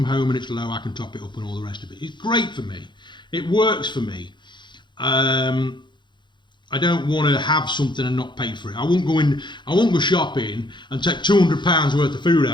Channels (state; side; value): late; right; 0.22 ms